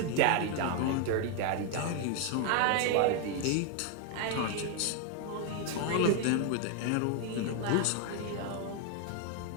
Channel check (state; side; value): different; both; correlation 0.01